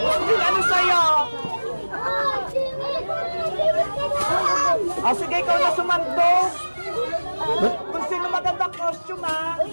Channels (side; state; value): both; inverted; correlation -1.00